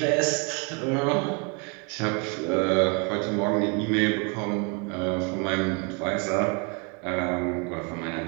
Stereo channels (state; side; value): quieter; left; 32.5 dB